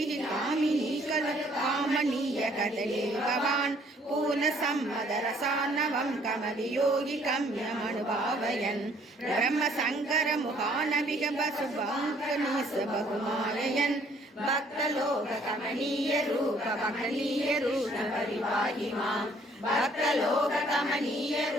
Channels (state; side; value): normal; both; correlation 0.61